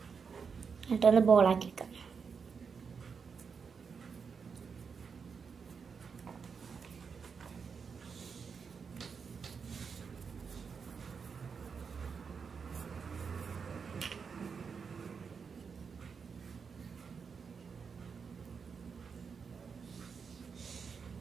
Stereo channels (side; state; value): left; quieter; 5.9 dB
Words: എന്നിട്ടൊന്ന് ബോളാക്കി വെക്കാം.